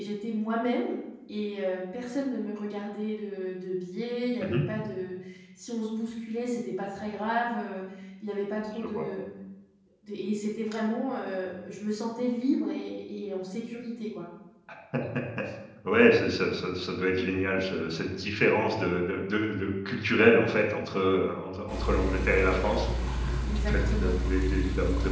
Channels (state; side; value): identical; both; correlation 1.00